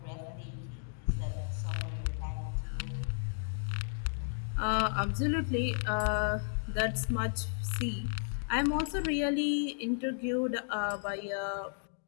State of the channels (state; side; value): silent; right; digital silence